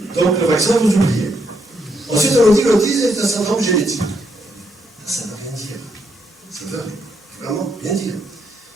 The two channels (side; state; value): both; normal; correlation 0.77